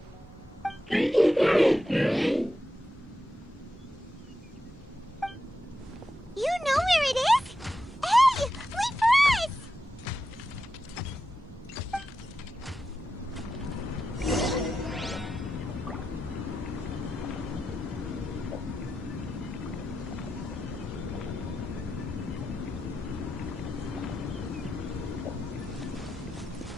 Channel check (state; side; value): normal; both; correlation 0.89